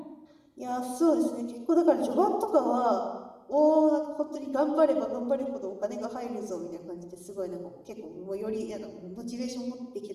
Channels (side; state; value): both; identical; correlation 1.00